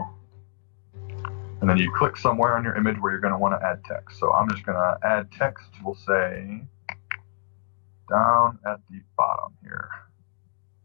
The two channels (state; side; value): silent; right; digital silence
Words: and then you click somewhere on your image where you're going to want to add text. So I'm just going to add text. We'll say down at the bottom here.